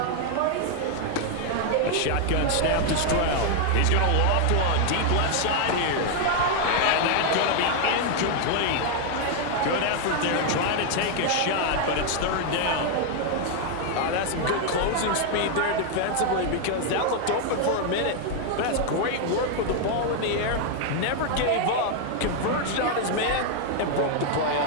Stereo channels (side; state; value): both; different; correlation 0.00